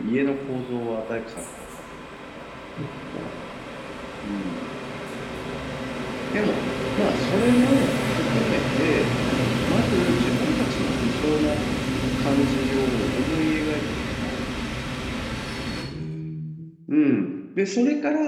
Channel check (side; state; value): both; identical; correlation 1.00